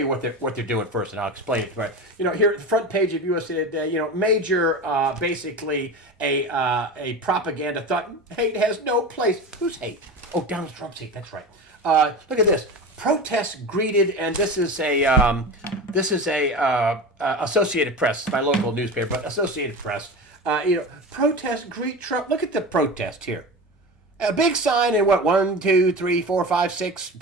what they're doing first, and I'll explain it. Right, here at the front page of USA Today, major, basically a propaganda thought. Hate has no place. Who's hate? Oh, Donald Trump's hate. That's right. Look at this. Protests greeted, and this is a Associated Press, my local newspaper, but Associated Press. Protests greet Trump. Look at the protest here. A big sign and what, 1, 2, 3, 4, 5, 6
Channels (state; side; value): normal; both; correlation 0.28